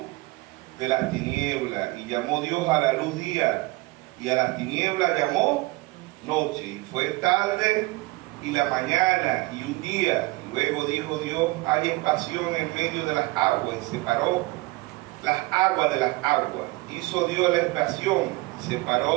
de las tinieblas, y llamó Dios a la luz día, y a las tinieblas llamó noche. Y fue tarde y la mañana y un día. Luego dijo Dios: haya espacio en medio de las aguas, y separó las aguas de las aguas. Hizo Dios la expiación y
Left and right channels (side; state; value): left; quieter; 22.3 dB